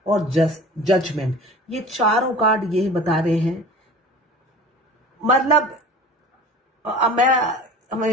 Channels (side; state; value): both; normal; correlation 0.41